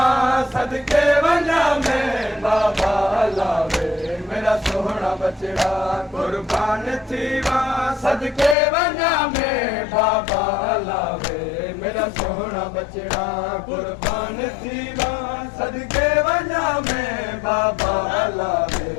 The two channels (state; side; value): drops out; right; at 8.6 s